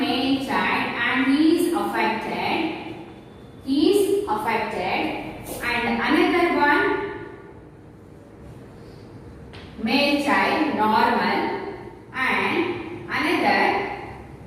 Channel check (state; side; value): identical; both; correlation 1.00